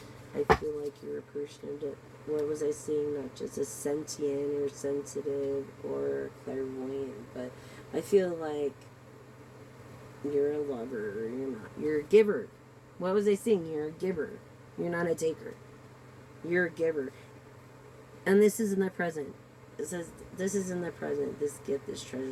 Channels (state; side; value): identical; both; correlation 1.00